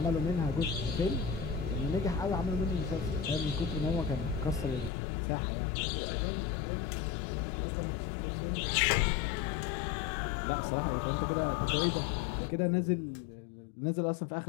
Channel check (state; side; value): drops out; right; at 4.9 s